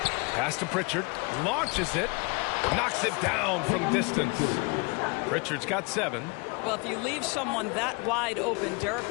Pass to Pritchard. Launches it. Knocks it down from distance. Pritchard's got 7. Well, if you leave someone that wide open, Derek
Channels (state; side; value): quieter; right; 30.3 dB